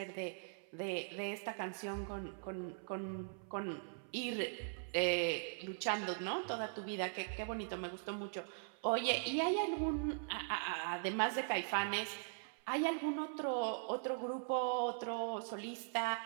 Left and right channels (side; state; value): left; silent; 50 dB below the other